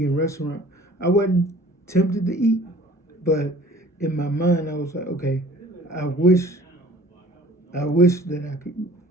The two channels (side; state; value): both; normal; correlation 0.50